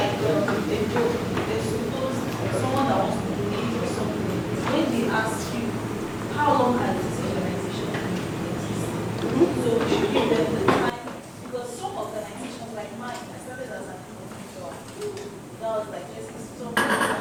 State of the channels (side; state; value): both; identical; correlation 1.00